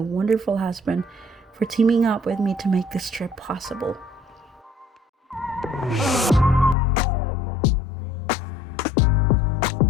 husband for teaming up with me to make this trip possible.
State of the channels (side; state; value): right; drops out; at 6.8 s